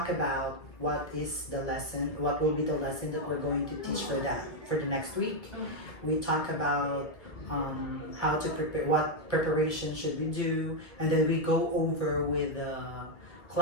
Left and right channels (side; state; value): right; late; 1.7 ms